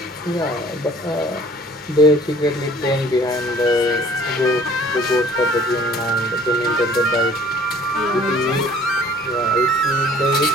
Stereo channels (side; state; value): both; normal; correlation 0.53